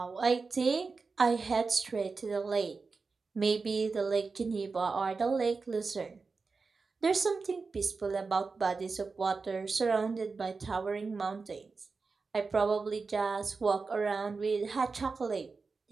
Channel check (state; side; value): quieter; left; 4.4 dB